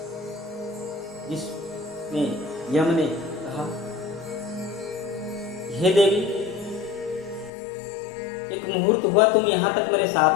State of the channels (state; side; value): drops out; right; at 7.5 s